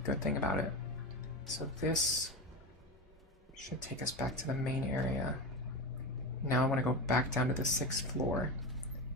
good thing about it. So this should take us back to the main area. Now I want to go back down to the 6th floor.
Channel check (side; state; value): both; normal; correlation 0.21